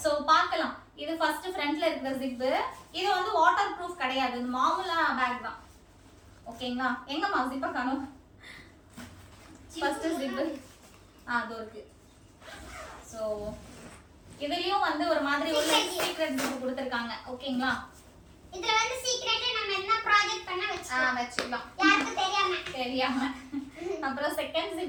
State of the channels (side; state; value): both; identical; correlation 1.00